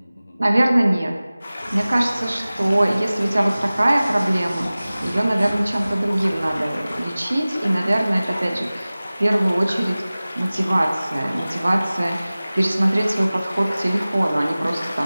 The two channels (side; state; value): both; inverted; correlation -0.98